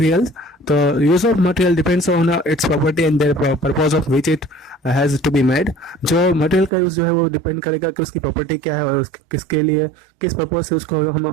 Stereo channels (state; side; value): drops out; left; at 6.7 s